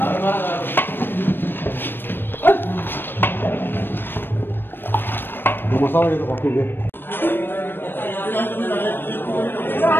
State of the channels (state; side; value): late; right; 0.097 ms